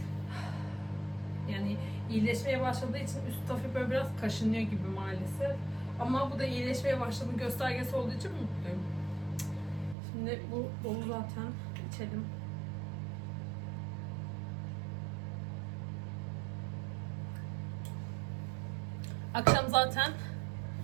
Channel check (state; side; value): drops out; left; at 10.0 s